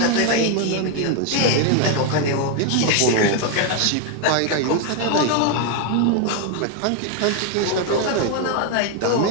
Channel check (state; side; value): different; both; correlation 0.01